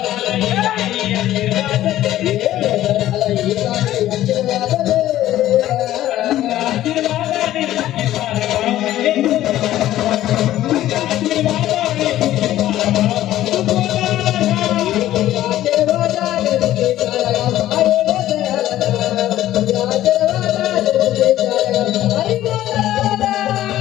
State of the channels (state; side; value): quieter; right; 13.7 dB